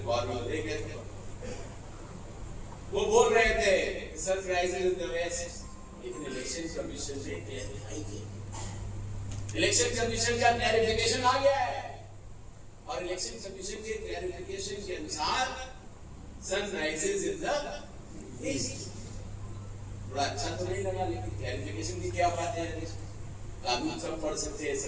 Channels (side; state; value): both; identical; correlation 1.00